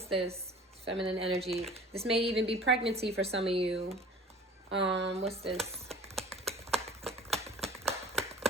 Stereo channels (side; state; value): both; normal; correlation 0.45